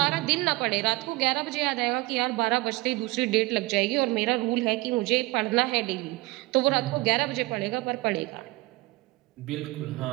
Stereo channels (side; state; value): left; quieter; 22.2 dB